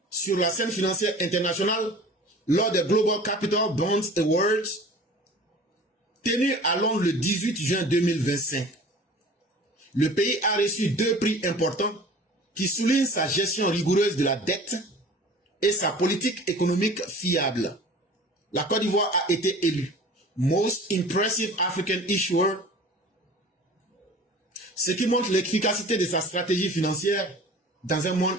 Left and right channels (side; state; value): both; normal; correlation 0.43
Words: sur la scène financière internationale lors des Global Capital Bonds Awards tenus à Londres le 18 juin 2025. Le pays a reçu 2 prix importants qui soulignent sa gestion rigoureuse de la dette et sa politique économique fiable. La Côte d'Ivoire a été élue Most Impressive African Issuer, ce qui montre l'efficacité de sa stratégie financière dans un